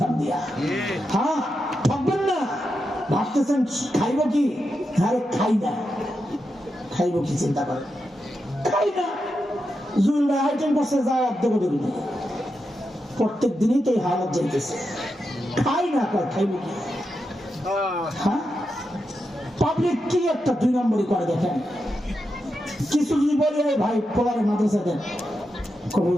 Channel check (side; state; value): both; normal; correlation 0.87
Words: দিয়া। হ্যাঁ থাকবেন না। ভাবতেছেন খাইব কি? আরে খাই না। খাইব কি চিন্তা করেন? খাই না। জুয়েল ভাই আইটেম করছে, যাও দেবো দেবো। প্রত্যেক দিনই তো এই হালত যাইতেছে। খাই না, খাইব কি? হ্যাঁ পাবলিক কি একটা দুই নম্বরই করে দেখেন। কিছু যদি বলে ভাই পোলারে মাদ্রাসা দেন,